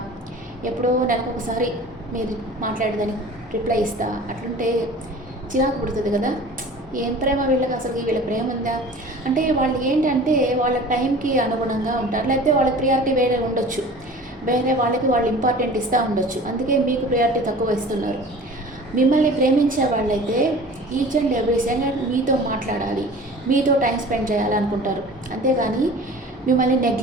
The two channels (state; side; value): normal; both; correlation 0.42